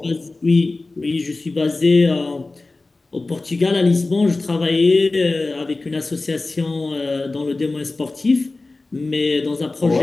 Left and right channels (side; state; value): right; quieter; 3.3 dB